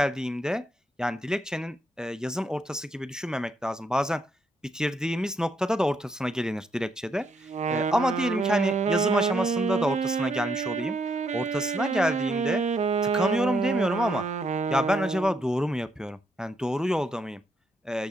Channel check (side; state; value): both; normal; correlation 0.75